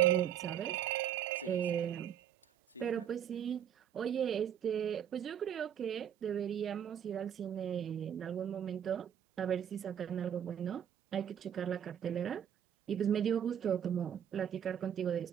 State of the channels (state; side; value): quieter; left; 9.4 dB